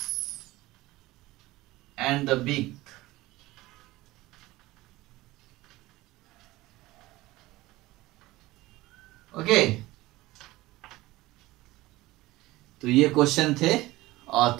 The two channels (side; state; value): left; quieter; 18.6 dB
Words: and the beak. Okay, तो ये question थे और